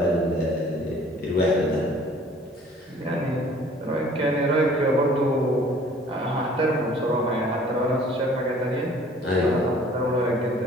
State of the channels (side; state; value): both; normal; correlation 0.53